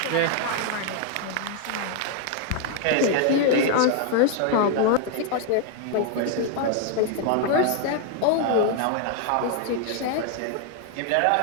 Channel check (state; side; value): different; both; correlation 0.00